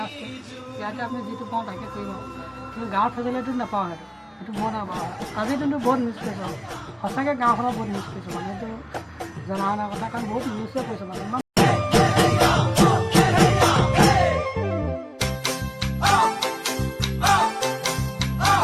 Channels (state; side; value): identical; both; correlation 1.00